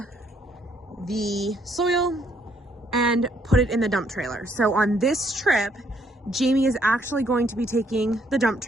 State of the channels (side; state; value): both; normal; correlation 0.69